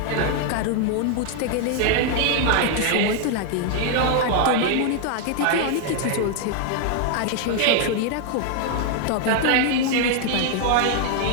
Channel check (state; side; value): different; both; correlation 0.00